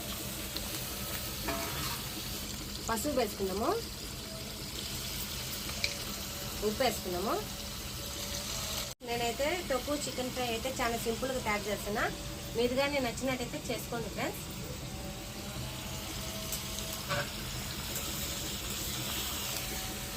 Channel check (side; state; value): both; identical; correlation 1.00